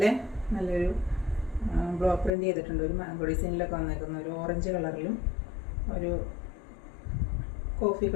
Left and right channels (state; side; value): drops out; right; at 2.3 s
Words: നല്ലൊരു ബ്ലോക്ക് പ്രിന്റ് ചെയ്തിട്ടുണ്ട്. ഒരു മാംഗോ ഡിസൈനിലൊക്കെ വന്നേക്കുന്ന ഒരു ഓറഞ്ച് കളറിലും ഒരു കോഫി